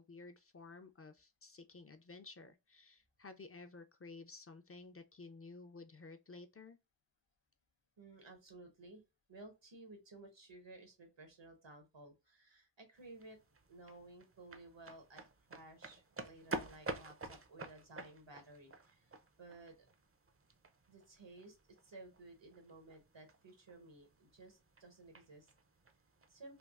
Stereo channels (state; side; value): normal; both; correlation -0.04